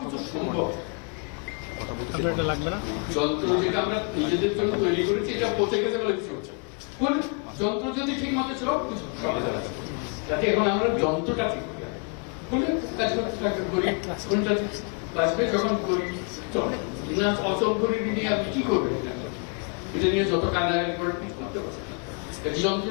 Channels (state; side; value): quieter; right; 37.5 dB